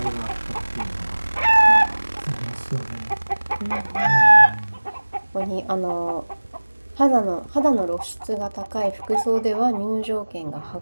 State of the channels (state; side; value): inverted; both; correlation -1.00